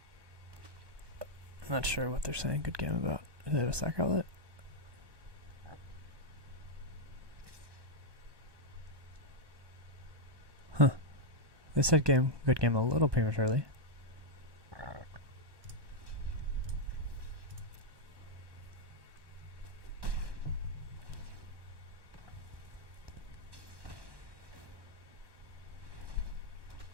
I'm not sure what they're saying good game about. Do they have a sack outlet? Huh. They said good game a little prematurely.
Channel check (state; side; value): late; left; 1.1 ms